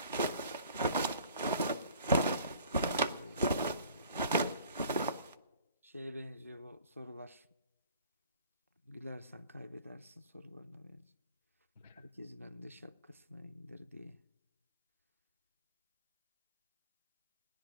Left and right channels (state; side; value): inverted; both; correlation -0.49